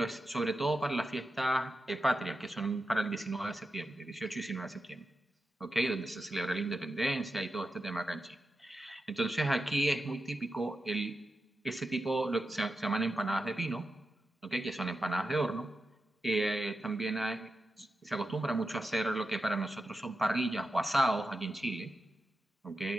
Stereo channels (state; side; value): normal; both; correlation 0.90